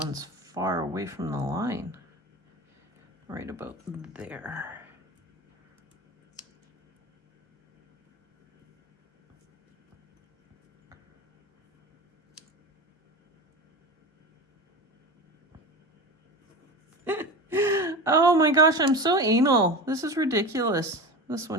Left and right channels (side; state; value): both; normal; correlation 0.28